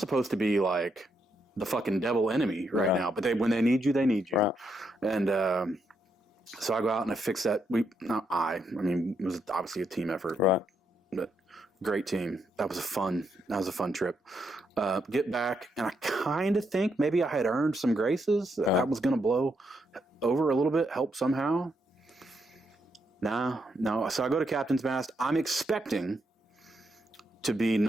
to be like the fucking devil enemy right now. But when they need you, they need you. Right. And so I go out and I fix that. I mean, it was obviously a team effort. Right. But great team. That was a fun trip. Get back, and I kind of think maybe I had earned some graces. That was going to blow over a little bit, help somehow. No. So I go to captain's mast. I'm expecting to be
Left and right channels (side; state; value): both; normal; correlation 0.79